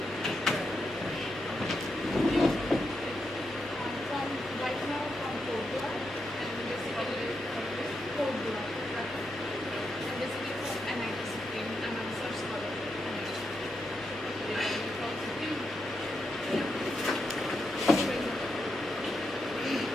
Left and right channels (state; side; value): normal; both; correlation 0.84